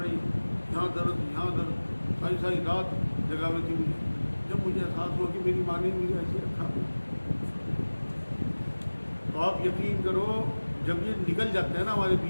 رہی یہاں درد ساری رات جگاوے تھی مجھے. جب مجھے احساس ہوا کہ میری ماں نے مجھے ایسے رکھا تو آپ یقین کرو جب یہ نکل جاتے ہیں نا ہمارے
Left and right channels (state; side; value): inverted; both; correlation -1.00